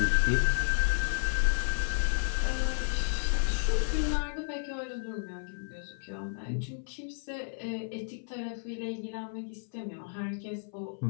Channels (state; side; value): silent; right; 56 dB below the other